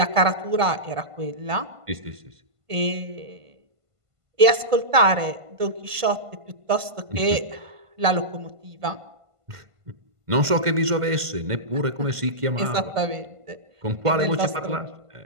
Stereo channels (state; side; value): late; left; 1.5 ms